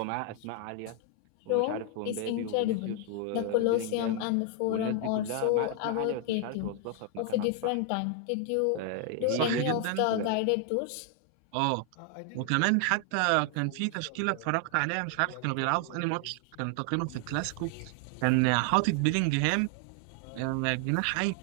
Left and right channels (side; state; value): both; different; correlation 0.00